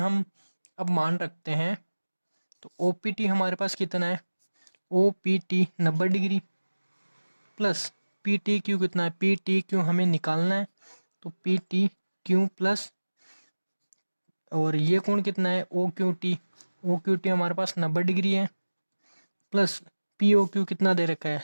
अब मान रखते हैं, तो ओ पी टी हमारे पास कितना है, O P T 90 degree plus P T Q कितना है, पी टी क्यू हमें निकालना है, तो पी टी क्यू प्लस और ये कोण कितना है, ओ क्यू टी हमारे पास 90 डिग्री है, प्लस पी ओ क्यू कितना दे रखा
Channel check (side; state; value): both; inverted; correlation -1.00